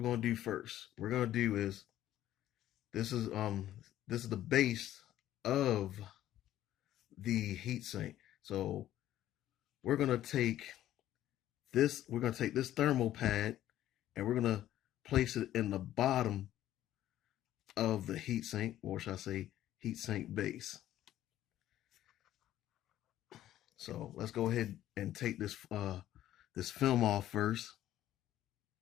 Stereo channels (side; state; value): right; quieter; 13.0 dB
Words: gonna do first. We're gonna do is this is the base of the heatsink. So we're gonna take this thermal pad and we're gonna place it in the bottom of the heatsink, or should I say heatsink base. So let's go ahead and take this film off first.